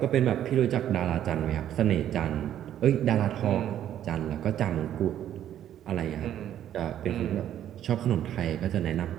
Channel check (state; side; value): quieter; left; 11.0 dB